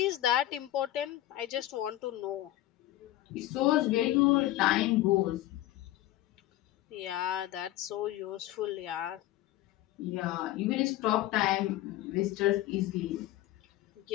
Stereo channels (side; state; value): right; quieter; 15.0 dB